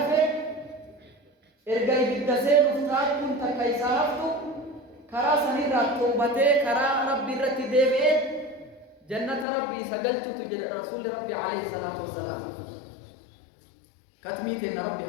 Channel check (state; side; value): drops out; right; at 9.5 s